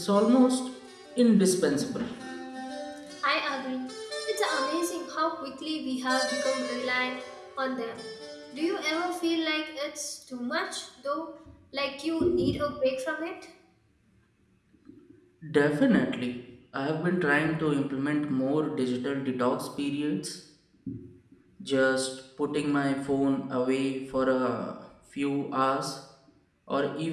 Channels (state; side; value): identical; both; correlation 1.00